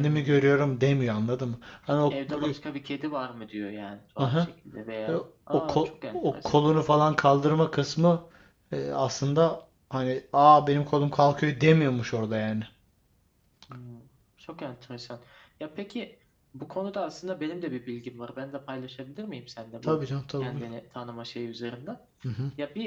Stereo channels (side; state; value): both; identical; correlation 1.00